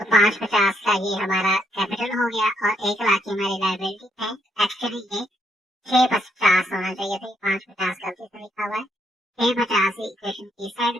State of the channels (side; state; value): both; normal; correlation 0.74